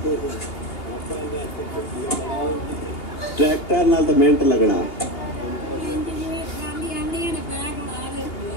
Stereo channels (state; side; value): late; right; 2.7 ms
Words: ट्रैक्टर नाल तो मिनट लगना